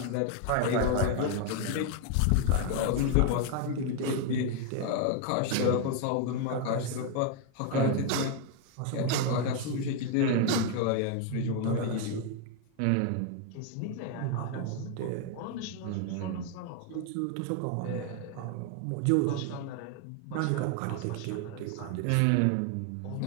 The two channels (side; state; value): both; different; correlation 0.01